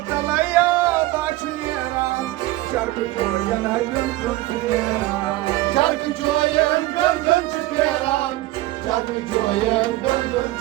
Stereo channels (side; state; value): left; quieter; 17.9 dB